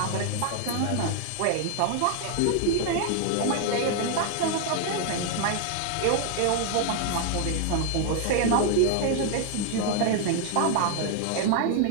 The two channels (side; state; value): both; different; correlation 0.00